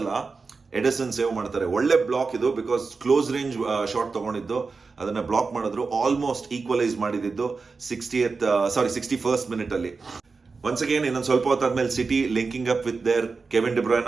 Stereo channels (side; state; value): left; quieter; 4.4 dB